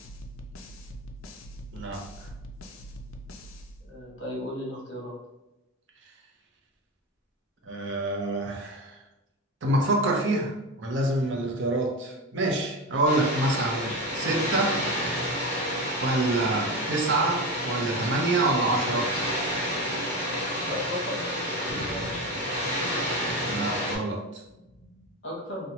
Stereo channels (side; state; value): both; normal; correlation 0.21